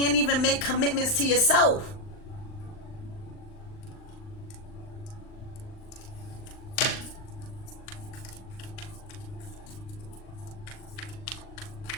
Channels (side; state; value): right; late; 39 ms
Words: even make commitments to yourself.